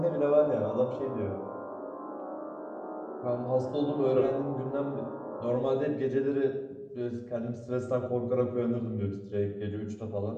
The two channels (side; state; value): both; identical; correlation 1.00